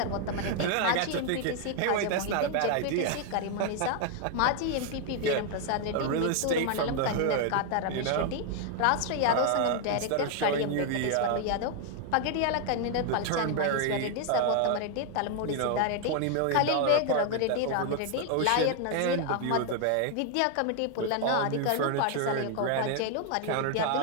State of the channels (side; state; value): both; different; correlation 0.00